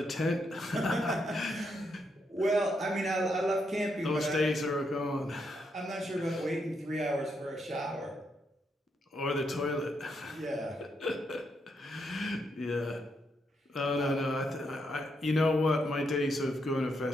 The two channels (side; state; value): both; normal; correlation 0.79